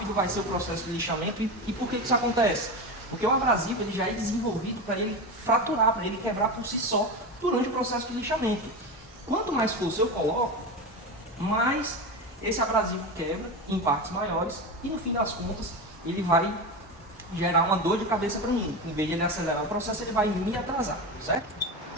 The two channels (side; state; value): both; normal; correlation 0.21